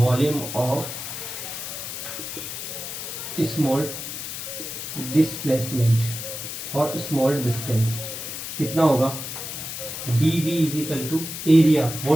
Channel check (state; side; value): noise; left; hiss, 7 dB below the sound